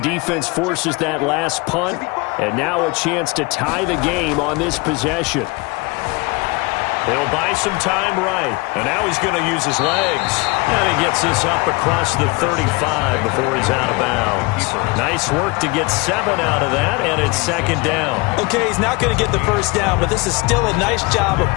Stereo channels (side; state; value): right; quieter; 26.0 dB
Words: forces that last punt, and now a chance to tie the game on this possession. He'll buy some time right. And now he's going to use his legs. And he gets this up across the 35 before he's out of bounds. Nice work to get 7 out of that, and it's second down. Okay, he's not going to get the first down, but this is still a nice job of